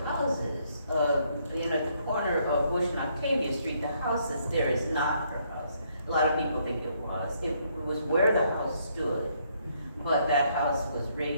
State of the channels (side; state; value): both; inverted; correlation -0.71